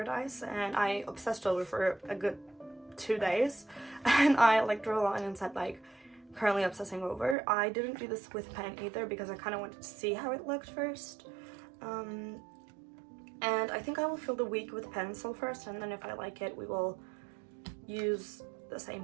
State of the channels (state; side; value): drops out; left; at 7.4 s